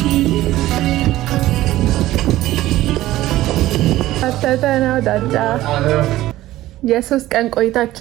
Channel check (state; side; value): quieter; left; 15.6 dB